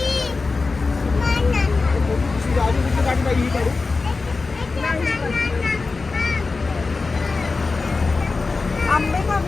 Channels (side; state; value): right; quieter; 4.0 dB